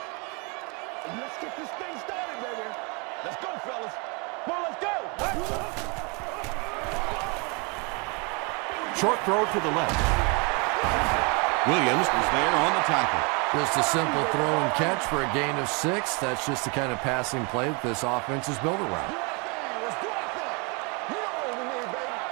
Let's get this thing started, baby. Let's go, fellas. Come on, let's go. Short throw to the left. Williams is there on the tackle. Just a simple throw and catch for a gain of 6. That's just the kind of passing play that this offense is built around.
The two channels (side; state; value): left; quieter; 31.8 dB